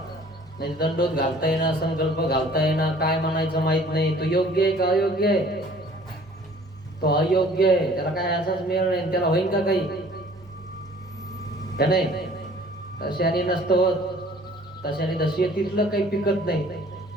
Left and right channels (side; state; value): both; normal; correlation 0.52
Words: नाही दंडोत घालता येणार संकल्प घालता येणार काय म्हणायचं माहित नाही. तो योग्य आहे का अयोग्य आहे. तो अयोग्य आहे त्याला काय असाच मेळ नाही त्याला होईल का काही का नाही. तशाने नसतं होत तशाने दशेतीतलं काही पिकत नाही.